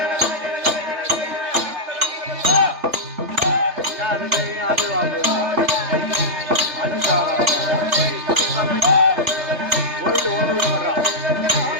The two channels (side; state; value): left; late; 3.4 ms